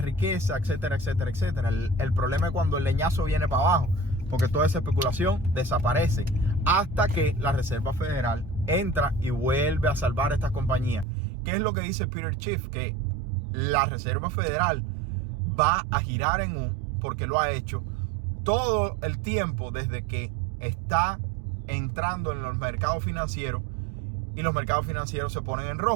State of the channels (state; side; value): drops out; left; at 11.1 s